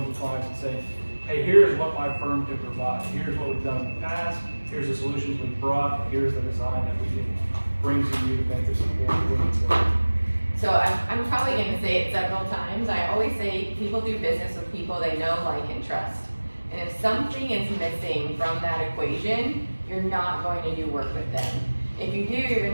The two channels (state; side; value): inverted; both; correlation -1.00